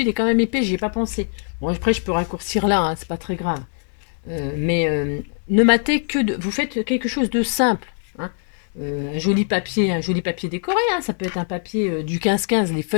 il est quand même épais, j'y ai pas pensé. Bon, après, je peux raccourcir là, hein, c'est pas très grave. Mais ne matez que de... Vous faites quelque chose de simple. Hein. Un joli papier décoré. Hein. Ça peut être un papier du 15-15, les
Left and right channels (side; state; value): right; silent; 64 dB below the other